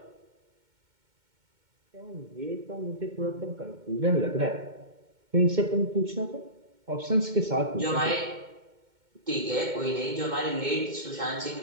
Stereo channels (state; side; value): late; left; 2.2 ms